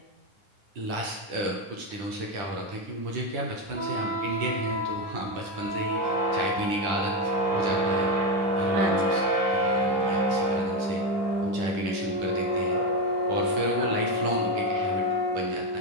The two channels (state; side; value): late; left; 10 ms